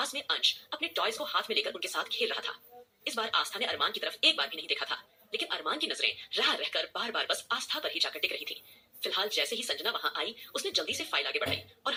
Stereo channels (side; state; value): both; identical; correlation 1.00